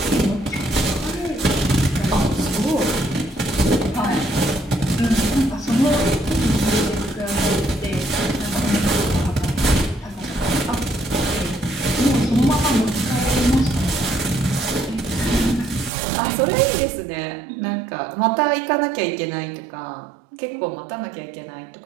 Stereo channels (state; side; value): drops out; left; at 15.9 s